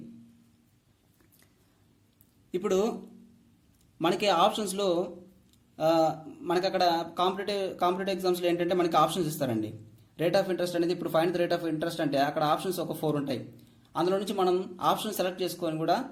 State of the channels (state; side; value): identical; both; correlation 1.00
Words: ఇప్పుడు మనకి ఆప్షన్స్లో మనకి అక్కడ కాంపిటేటివ్ ఎగ్జామ్స్లో ఏంటంటే మనకి ఆప్షన్స్ ఇస్తారండి. రేట్ ఆఫ్ ఇంట్రెస్ట్ అనేది ఇప్పుడు find the rate of interest అంటే అక్కడ ఆప్షన్స్ ఒక 4 ఉంటాయి. అందులో నుంచి మనం ఆప్షన్ సెలెక్ట్ చేసుకొని కూడా